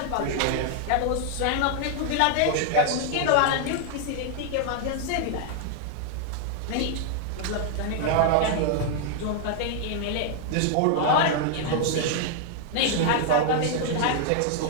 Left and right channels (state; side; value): different; both; correlation 0.00